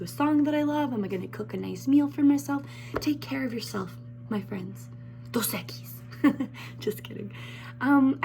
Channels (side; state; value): both; identical; correlation 1.00